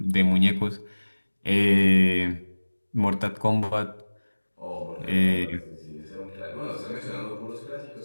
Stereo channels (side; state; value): both; inverted; correlation -1.00